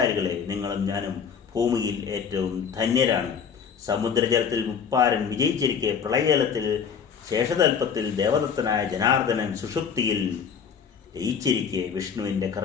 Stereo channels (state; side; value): quieter; right; 6.9 dB